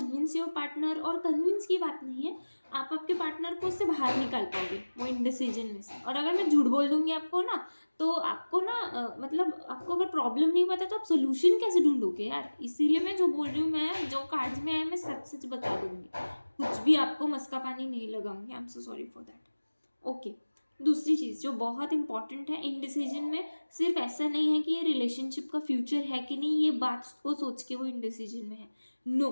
your partner. और कन्विंस की बात नहीं है, आप आपके पार्टनर को उससे बाहर निकाल पाओगे वो इनडिसीजन में से। और अगर मैं झूठ बोल दूंगी आपको ना, तो आपको ना मतलब आपको अगर प्रॉब्लम नहीं पता तो आप सोल्यूशन कैसे ढूंढोगे यार। इसीलिए मैं जो बोल रही हूँ, मैं जो कार्ड्स में है मैं सच सच बता दूंगी, कुछ भी आपको मस्का पानी नहीं लगाऊंगी। आई am so sorry for that. Okay, दूसरी चीज़ जो बहुत इंपॉर्टेंट है इनडिसीजन में, सिर्फ ऐसा नहीं है कि ये रिलेशनशिप का फ्यूचर है कि नहीं, ये बात को सोच के वो इनडिसीजन में है। नो,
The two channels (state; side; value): inverted; both; correlation -1.00